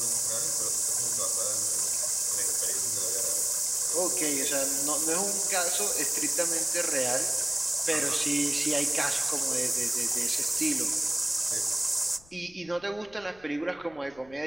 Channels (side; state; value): left; noise; rumble, 26 dB below the sound